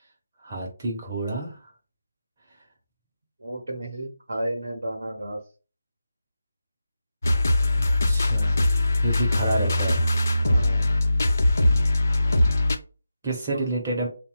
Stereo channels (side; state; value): both; inverted; correlation -0.89